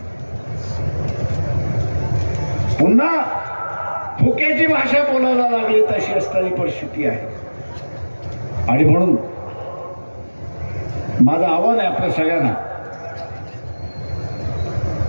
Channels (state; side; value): inverted; both; correlation -1.00